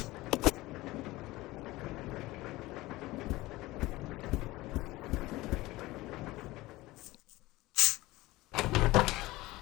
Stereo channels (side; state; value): right; quieter; 19.2 dB